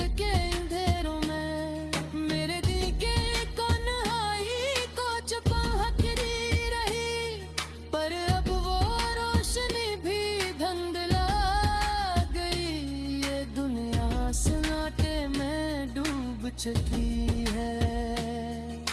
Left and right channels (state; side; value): identical; both; correlation 1.00